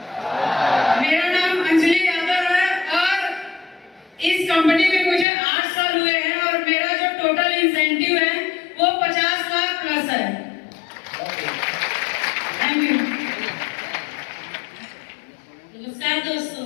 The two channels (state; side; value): drops out; right; at 5.2 s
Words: मेरा नाम अंजलि यादव है और इस कंपनी में मुझे 8 साल हुए हैं और मेरा जो टोटल इंसेंटिव है वो 50 लाख प्लस है। Thank you. नमस्कार दोस्तों,